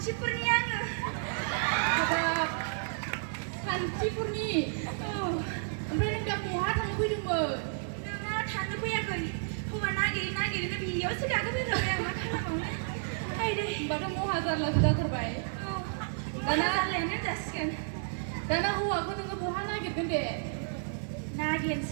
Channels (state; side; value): silent; left; 57 dB below the other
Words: आङो हाबाब सान्थिफुरनि ओमफ्राय नों दा बहा थांनो फैदोंमोन नोंना थांनो फैयाखै हौवा नागिरनो बेयावसो गाखोफैबाय आं मा खालामबावनो आइदै होनबाथ' महा जारलासो जाथारबाय दाना जारलायानो जासिगोन दाना हौवाखौ नोङो बहा नागिरगोन दे